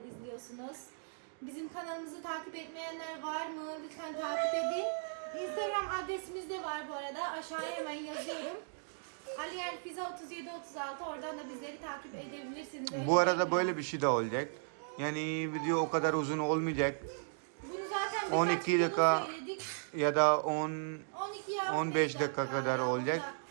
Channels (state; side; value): silent; left; digital silence